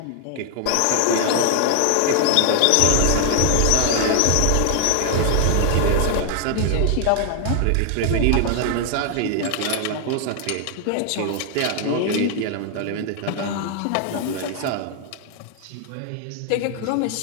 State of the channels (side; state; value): both; different; correlation 0.00